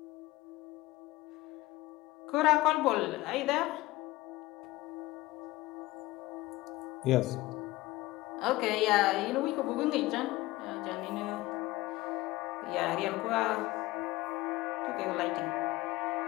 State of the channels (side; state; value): right; quieter; 18.8 dB